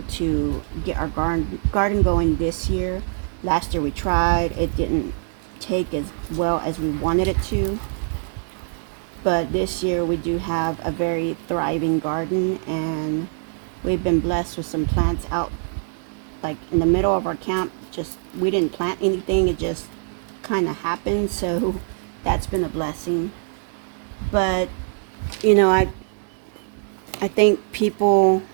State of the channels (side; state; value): left; silent; digital silence